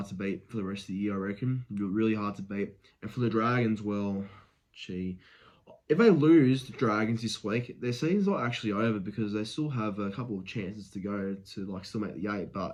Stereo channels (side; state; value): both; identical; correlation 1.00